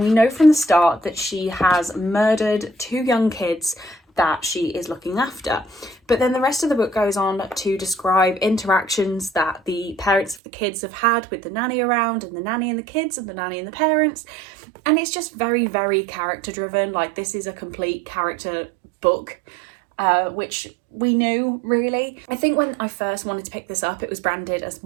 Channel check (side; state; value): left; drops out; at 10.4 s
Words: we know from the start that she has murdered 2 young kids that she is looking after. But then the rest of the book goes on to describe interactions that the parents of the kids have had with the nanny around, and the nanny and the kids, and the nanny and the parents. And it's just very, very character driven. Like, this is a complete character book, which we knew, really. I think when I first wanted to pick this up, it was branded as